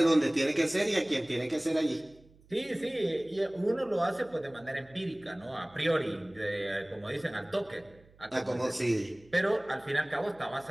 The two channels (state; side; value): noise; right; hum, 27 dB below the sound